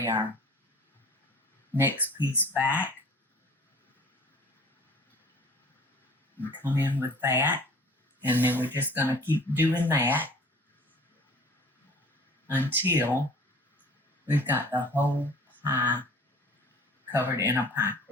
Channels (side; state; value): both; normal; correlation 0.48